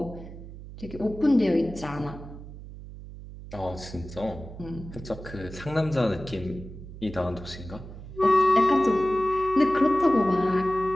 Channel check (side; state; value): right; noise; hum, 14 dB below the sound